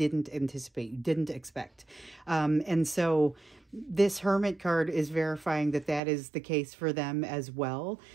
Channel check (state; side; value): drops out; left; at 6.0 s